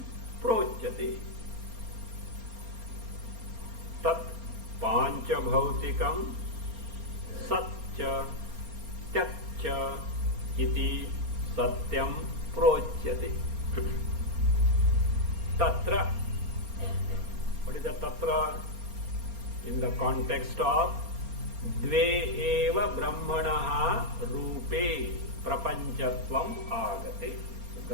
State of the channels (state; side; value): late; left; 4.3 ms